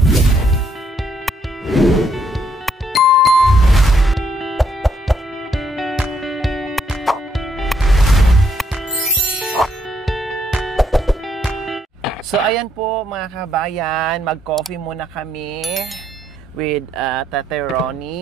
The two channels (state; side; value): normal; both; correlation 0.72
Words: So, ayan po mga kabayan, mag-coffee muna kami with Tatay